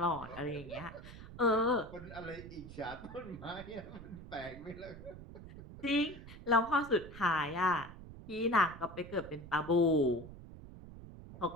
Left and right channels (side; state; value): right; noise; rumble, 14 dB below the sound